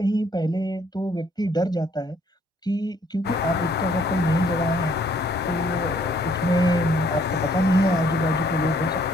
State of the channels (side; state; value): both; normal; correlation 0.64